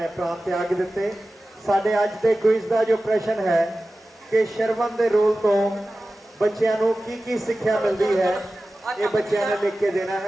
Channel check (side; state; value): both; normal; correlation 0.95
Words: ਪ੍ਰਾਣ ਤਿਆਗ ਦਿੱਤੇ। ਸਾਡੇ ਅੱਜ ਦੇ ਕੁਇਜ਼ ਦਾ ਜੋ ਪ੍ਰਸ਼ਨ ਹੈ ਕਿ ਸ਼ਰਵਣ ਦੇ ਰੋਲ ਤੋਂ ਬੱਚਿਆਂ ਨੂੰ ਕੀ ਕੀ ਸਿੱਖਿਆ ਮਿਲਦੀ ਹੈ, ਇਹ ਬੱਚਿਆਂ ਨੇ ਲਿਖ ਕੇ ਦੇਣਾ